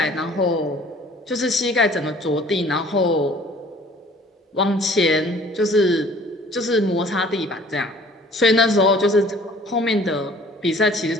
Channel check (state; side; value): normal; both; correlation 0.53